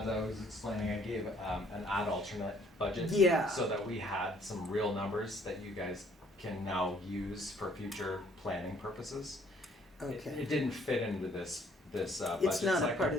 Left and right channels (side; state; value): both; normal; correlation 0.62